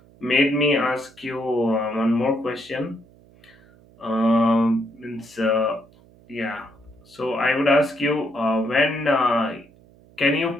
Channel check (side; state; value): right; noise; hum, 27 dB below the sound